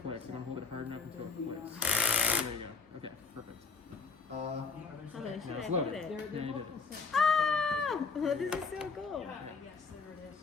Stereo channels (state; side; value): quieter; right; 4.7 dB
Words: clicks. You don't set. hold it hard enough until it The, clicks. There you go. Okay, perfect. Oh, shit, Now I it's hit loaded. it. They're Yeah, you did. multiple sets. Oh, this is so cool. Yes, there it is.